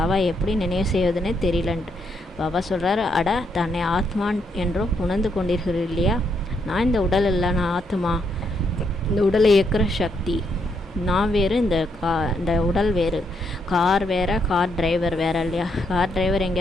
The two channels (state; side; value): normal; both; correlation 0.76